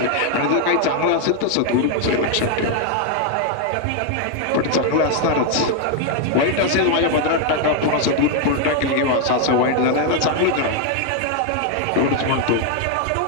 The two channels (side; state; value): both; different; correlation 0.00